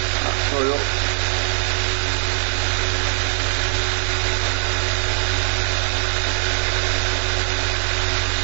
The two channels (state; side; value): silent; left; 62 dB below the other